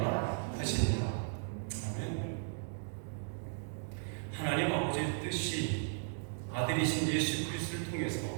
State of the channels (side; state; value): left; silent; digital silence